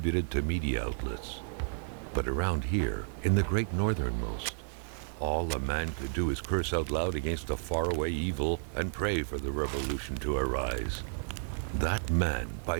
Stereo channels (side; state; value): left; silent; digital silence